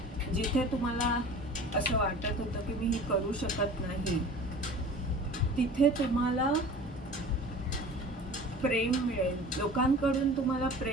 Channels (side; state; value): both; normal; correlation 0.41